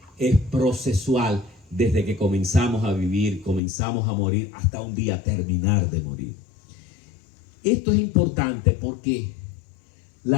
es procesual. Desde que comenzamos a vivir, comenzamos a morir, hasta un día terminar de morir. Esto es importante porque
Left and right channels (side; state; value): right; drops out; at 3.6 s